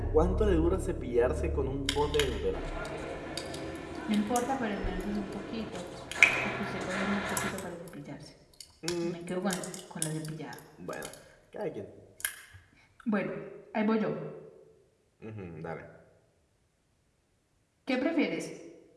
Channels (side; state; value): both; identical; correlation 1.00